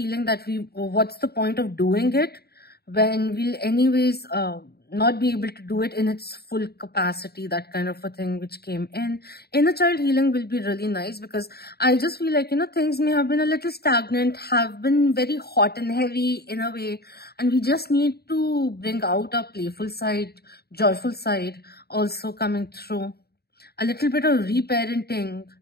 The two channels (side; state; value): right; late; 0.46 ms